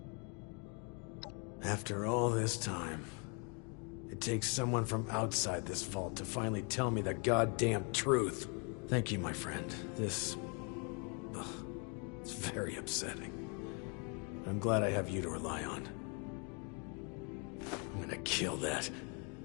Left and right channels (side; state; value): right; quieter; 35.8 dB